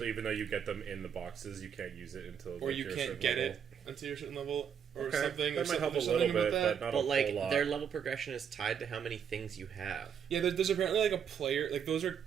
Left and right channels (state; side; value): quieter; left; 7.8 dB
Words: even though you get them in the boxes, you can't use it until or like, you can't get it until you're a certain level or something. That or might help a something little about bit, that. but not But a like whole lot. their level progression is tied to how many things you have. Yeah, there's apparently like a player, like those are